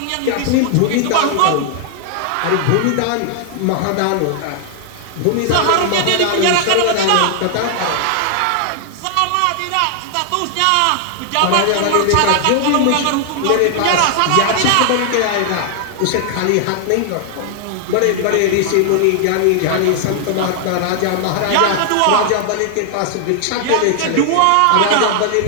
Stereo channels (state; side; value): different; both; correlation 0.00